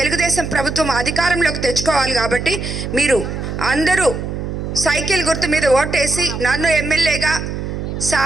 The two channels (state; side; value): noise; right; hum, 5 dB below the sound